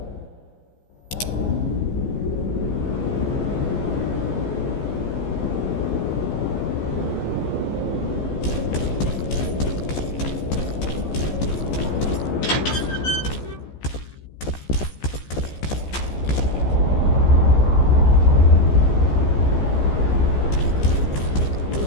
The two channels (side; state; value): right; late; 15 ms